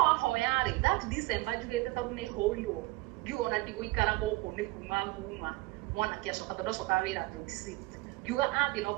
hoyari that December jugete tondu ni hoirwo ngiona ndigũikara gũkũ nĩ kuma nguma mwanake acoka tondu acoka wĩra 26 ngiuga athi no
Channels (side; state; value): left; quieter; 21.9 dB